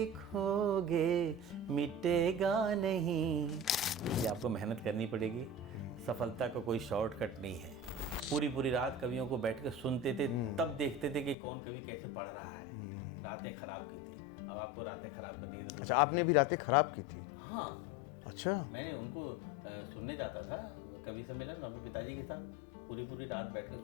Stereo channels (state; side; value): drops out; right; at 11.4 s